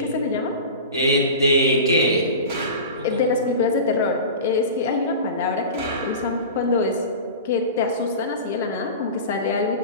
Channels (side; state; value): both; inverted; correlation -0.32